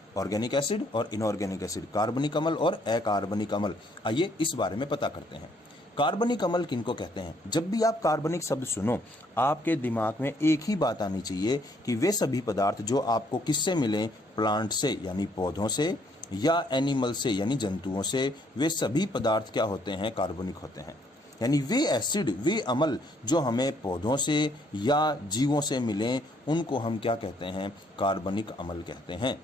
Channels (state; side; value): normal; both; correlation 0.67